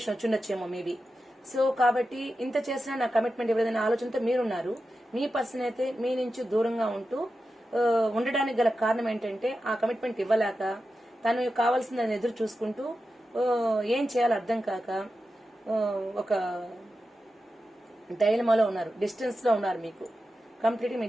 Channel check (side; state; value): both; normal; correlation 0.91